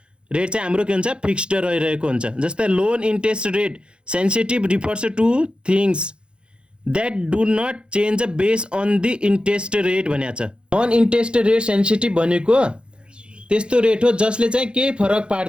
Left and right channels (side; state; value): left; late; 0.055 ms